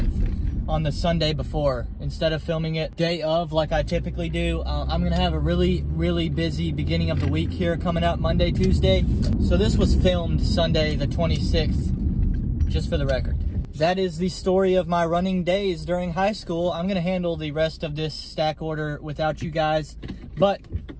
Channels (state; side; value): identical; both; correlation 1.00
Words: on the Sunday before, instead of filming it day of like I typically do. I'm gonna have a really busy beginning of the week here coming up Monday, Tuesday. So this was filmed Sunday the 26th, just for the record. That is the story of my running days during high school. I'm gonna handle the rest of this stack order without you guys, but